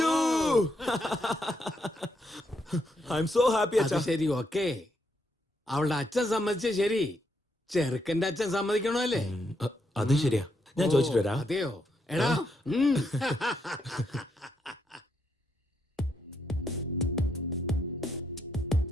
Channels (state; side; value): normal; both; correlation 0.78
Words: ഐ എം സോ ഹാപ്പി അച്ഛാ. ശരി, ഓക്കേ. അവളുടെ അച്ഛൻ സമ്മതിച്ച ശരി, ചെറുക്കന്റെ അച്ഛൻ സമ്മതിക്കണോ? അത് ശരിയാ. ഞാൻ ചോദിച്ചിട്ട് വരാം. അതെയോ? എടാ,